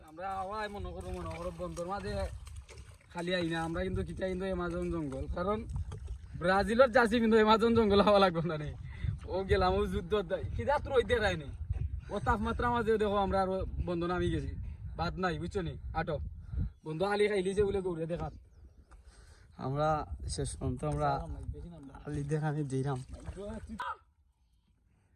মনে করো বন্ধুর মাঝে খালি আই না আমরা কিন্তু কিটা কিন্তু এমাজন জঙ্গল কারণ ব্রাজিলের জার্সি কিন্তু এমাজন জঙ্গল হওয়া লাগবে না রে ও গেলাম ও যুদ্ধ কিটা তোর ওইতে রায়নি ও তাপমাত্রা মাঝে দেখো আমরা আর বন্ধু নামি গেছি বাদ নাই বুঝছো নি আটো বন্ধু আলি খাইলিছে বলে গৌরে দেখাত আমরা শেষ পর্যন্ত আমরা আলি দেখানি দিলাম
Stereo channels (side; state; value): both; identical; correlation 1.00